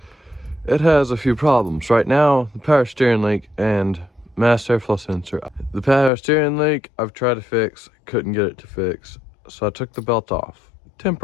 It has a few problems. Right now, the power steering leak and master airflow sensor. The power steering leak, I've tried to fix, couldn't get it to fix. So I took the belt off.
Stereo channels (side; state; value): right; drops out; at 6.1 s